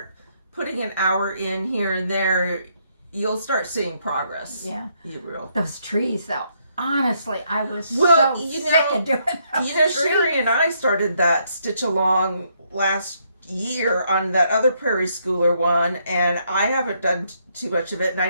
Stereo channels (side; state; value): both; inverted; correlation -0.73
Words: putting an hour in here and there, you'll start seeing progress. Yeah. You will. Those trees, though. Honestly, I was so sick of doing those trees. Sherry and I started that stitch along last year on that other Prairie Schooler one, and I haven't done too much of it, and